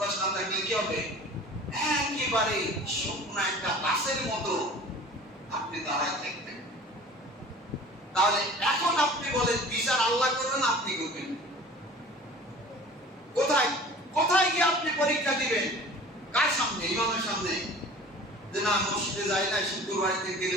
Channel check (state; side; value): normal; both; correlation 0.43